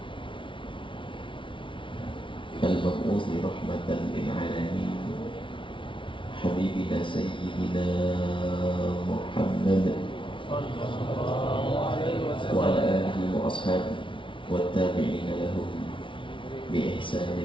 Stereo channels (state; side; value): late; right; 0.25 ms